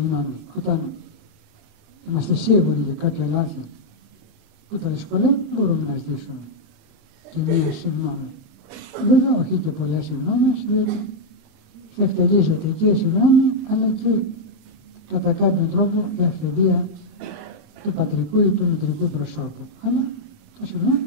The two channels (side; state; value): left; late; 27 ms